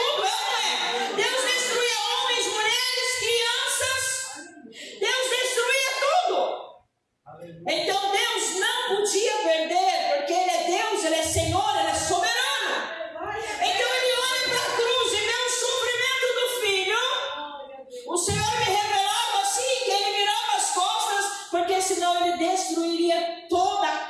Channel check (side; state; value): both; identical; correlation 1.00